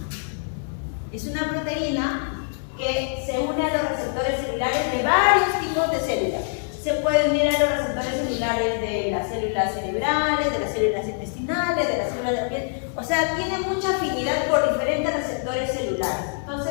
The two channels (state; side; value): silent; right; 62 dB below the other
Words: es una proteína que se une a los receptores celulares de varios tipos de células. Se puede unir a los receptores celulares de las células cerebrales, de las células intestinales, de las células de la piel. O sea, tiene mucha afinidad por diferentes receptores celulares.